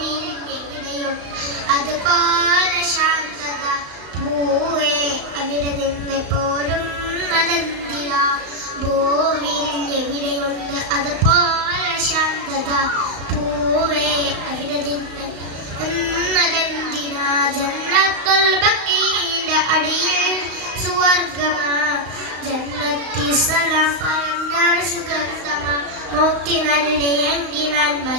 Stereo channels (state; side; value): late; left; 35 ms